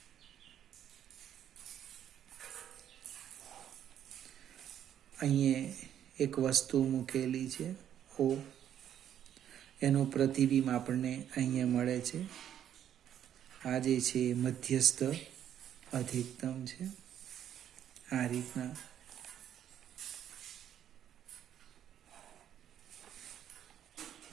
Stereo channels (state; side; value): quieter; left; 10.1 dB